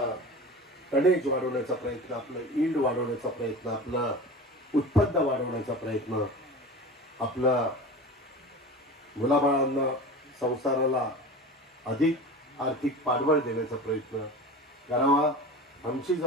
टनेज वाढवण्याचा प्रयत्न, आपलं ईल्ड वाढवण्याचा प्रयत्न, आपलं उत्पन्न वाढवण्याचा प्रयत्न, आपला मुलाबाळांना संसाराला अधिक आर्थिक पाठबळ देण्याचा प्रयत्न करावा. आमची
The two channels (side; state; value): both; normal; correlation 0.34